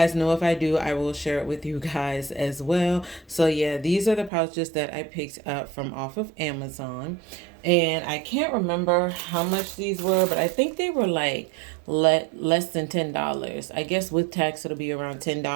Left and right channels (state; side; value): drops out; left; at 4.3 s